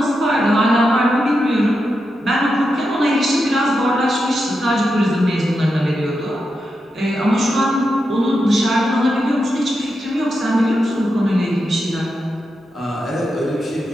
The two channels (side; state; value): both; normal; correlation 0.87